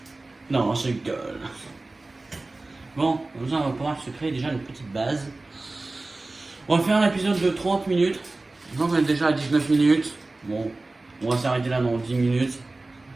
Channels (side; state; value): left; quieter; 3.1 dB